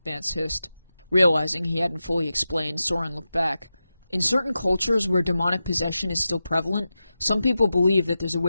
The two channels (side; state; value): both; inverted; correlation -0.92